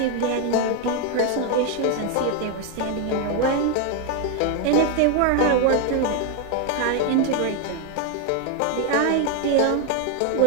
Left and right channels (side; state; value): both; different; correlation 0.01